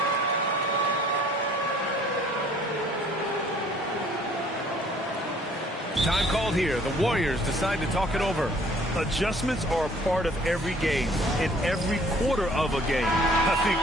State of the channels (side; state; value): both; normal; correlation 0.57